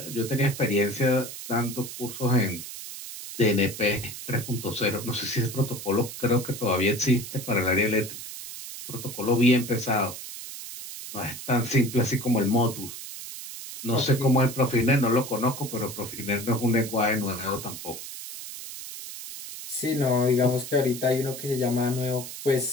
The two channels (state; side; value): noise; right; hiss, 10 dB below the sound